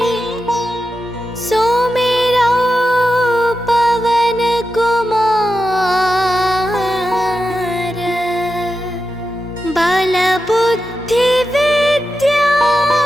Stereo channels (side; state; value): both; normal; correlation 0.90